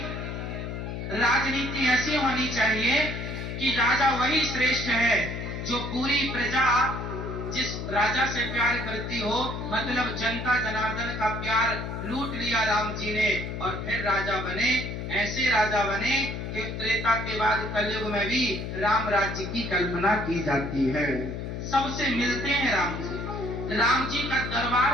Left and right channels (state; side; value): noise; left; hum, 5 dB below the sound